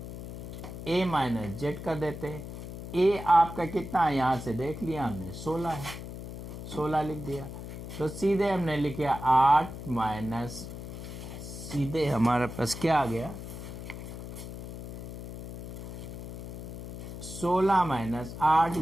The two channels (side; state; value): left; noise; hum, 10 dB below the sound